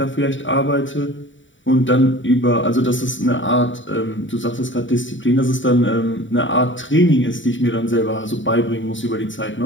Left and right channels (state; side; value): late; right; 0.55 ms